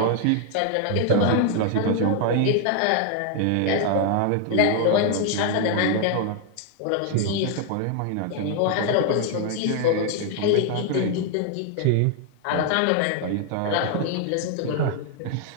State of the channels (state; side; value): different; both; correlation 0.00